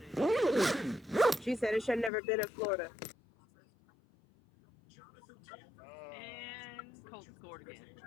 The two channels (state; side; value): drops out; right; at 2.1 s